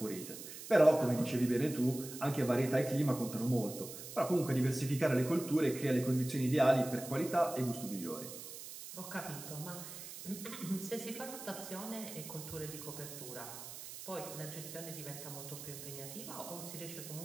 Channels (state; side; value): noise; right; hiss, 11 dB below the sound